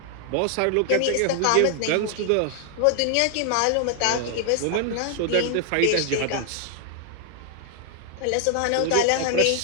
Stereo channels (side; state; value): both; different; correlation 0.00